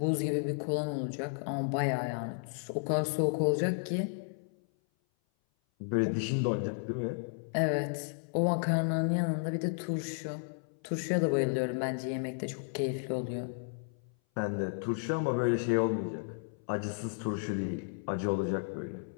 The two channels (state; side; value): silent; right; 56 dB below the other